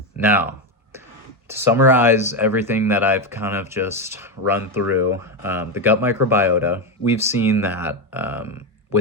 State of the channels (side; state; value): both; normal; correlation 0.10